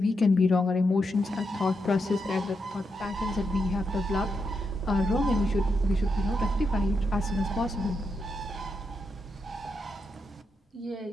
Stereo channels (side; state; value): both; normal; correlation 0.84